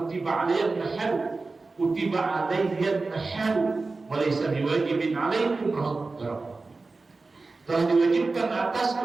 alayyan nahar, kutiba alayyan nahar, wa laysa biwajibin alaikum." Telah diwajibkan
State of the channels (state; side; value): quieter; left; 3.7 dB